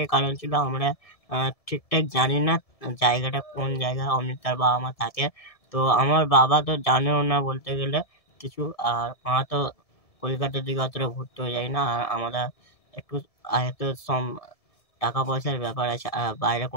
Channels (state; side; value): late; right; 1.7 ms